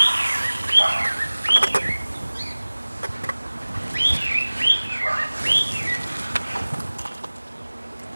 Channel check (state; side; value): inverted; both; correlation -1.00